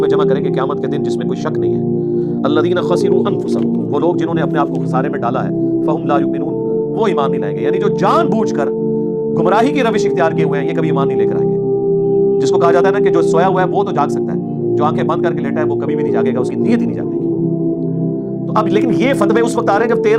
جمع کریں گے قیامت کے دن جس میں کوئی شک نہیں ہے۔ الذین خسروا انفسهم، وہ لوگ جنہوں نے اپنے آپ کو خسارے میں ڈالا ہے، فہم لا یؤمنون، وہ ایمان نہیں لائیں گے، یعنی جو جان بوجھ کر گمراہی کی روش اختیار کیے ہوئے ہیں یہ کبھی ایمان نہیں لے کر آئیں گے۔ جس کو کہا جاتا ہے نا کہ جو سویا ہوا ہے وہ تو جاگ سکتا ہے، جو آنکھیں بند کر کے لیٹا ہے وہ کبھی بھی نہیں جاگے گا، اس کی نیت ہی نہیں جاگے گی۔ تو اب لیکن یہ فتوے اس وقت آ رہے ہیں جب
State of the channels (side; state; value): both; identical; correlation 1.00